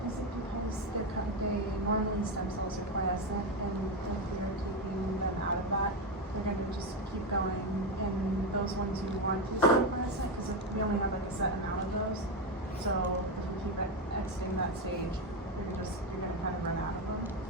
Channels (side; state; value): both; normal; correlation 0.11